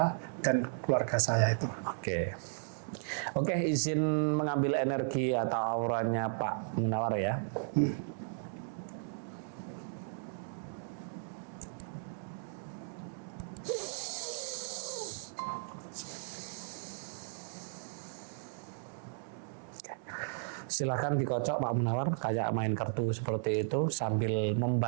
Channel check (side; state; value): left; silent; digital silence